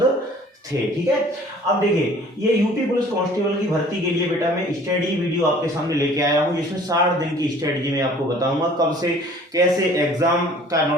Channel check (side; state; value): both; normal; correlation 0.51